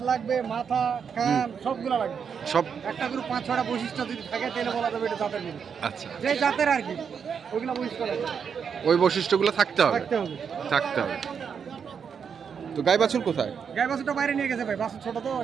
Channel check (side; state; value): left; quieter; 6.8 dB